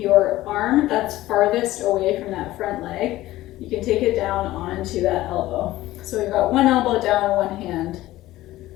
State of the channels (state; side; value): quieter; right; 16.2 dB